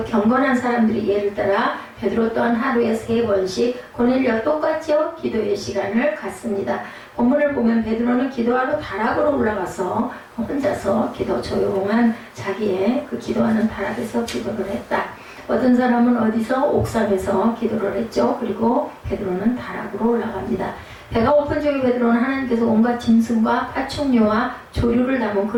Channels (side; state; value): both; identical; correlation 1.00